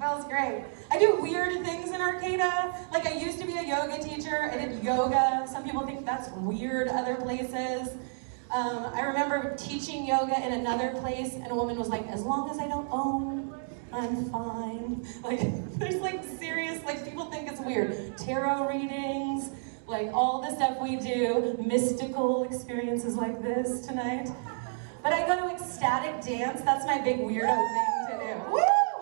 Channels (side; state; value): left; silent; digital silence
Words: great. I do weird things in Arcata. I used to be a yoga teacher. I did yoga. Some people think that's weird other places. I remember teaching yoga in another place, and a woman was like, as long as I don't own, I'm fine. There's serious, people think it's weird. Tarot readings, all the stuff we do, mystical experiences like this tonight. But I go to ecstatic dance, that's my big weirdo thing to do. Woo!